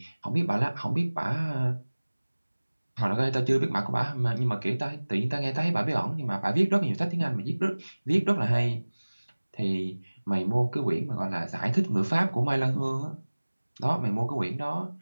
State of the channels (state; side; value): inverted; both; correlation -1.00